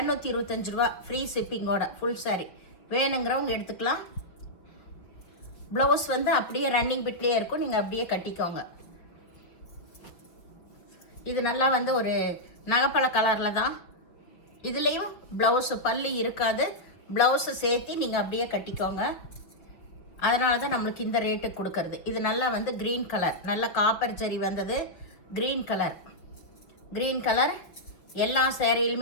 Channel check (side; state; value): right; late; 5.6 ms